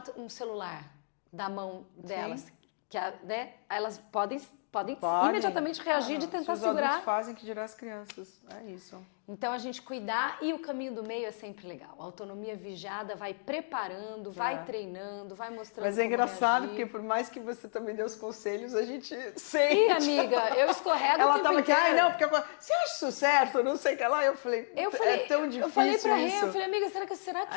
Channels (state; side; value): silent; right; digital silence